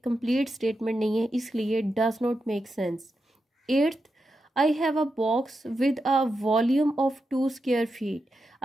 कंप्लीट स्टेटमेंट नहीं है, इसलिए does not make sense. 8th, I have a box with a volume of 2 square feet.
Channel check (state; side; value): normal; both; correlation 0.88